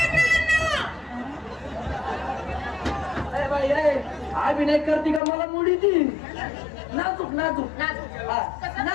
बाई अभिनय करते का मला मुडी ती नाजूक नाजूक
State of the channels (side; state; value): right; drops out; at 5.2 s